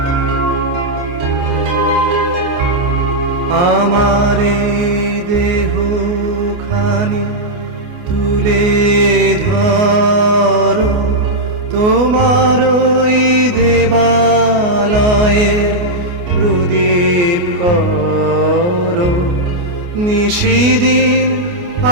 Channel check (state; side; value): late; left; 29 ms